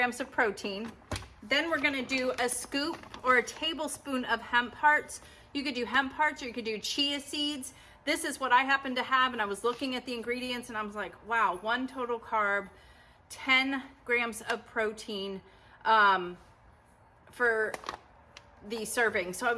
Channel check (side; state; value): both; identical; correlation 1.00